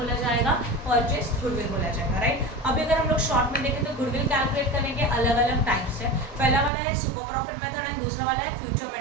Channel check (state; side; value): drops out; left; at 6.7 s